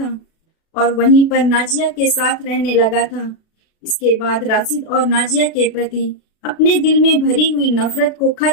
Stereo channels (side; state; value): right; late; 36 ms